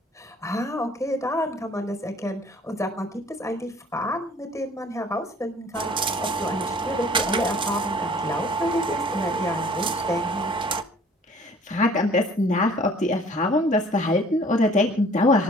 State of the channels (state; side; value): normal; both; correlation 0.53